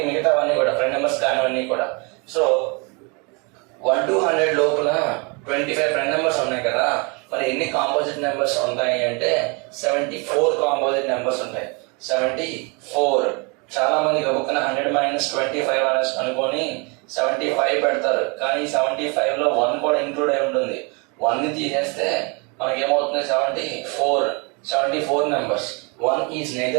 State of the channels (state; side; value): quieter; left; 31.4 dB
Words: మిగతావన్నీ కూడా ప్రైమ్ నెంబర్స్ కానివన్నీ కూడా. సో 1 to 100 లోపల 25 ప్రైమ్ నెంబర్స్ ఉన్నాయి కదా, మరి ఎన్ని కాంపోజిట్ నెంబర్స్ ఉంటాయి అంటే 74 కాంపోజిట్ నెంబర్స్ ఉంటాయి. 74. చాలా మంది గబుక్కున 100 - 25 అనేసి అనుకొని 75 పెడతారు, కానీ 75 లో 1 కూడా ఇంక్లూడ్ అయి ఉంటుంది. 1 ని తీసేస్తే మనకి ఏమవుతుంది? 74 numbers. 1 is